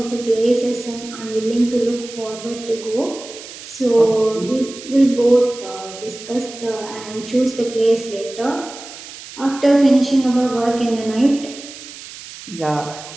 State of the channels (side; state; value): right; noise; hiss, 15 dB below the sound